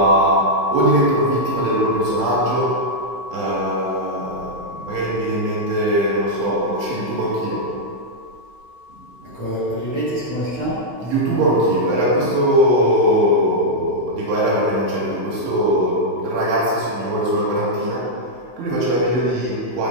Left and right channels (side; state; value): left; late; 15 ms